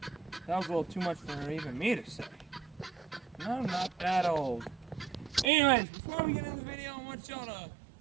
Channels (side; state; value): left; drops out; at 5.5 s